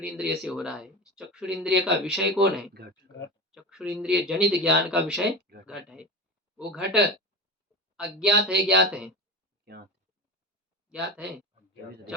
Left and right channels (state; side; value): normal; both; correlation 0.25